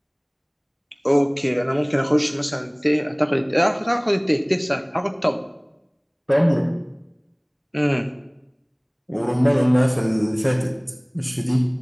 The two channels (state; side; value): identical; both; correlation 1.00